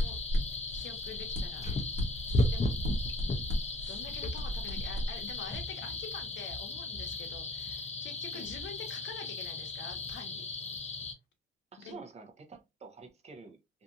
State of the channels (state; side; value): normal; both; correlation 0.52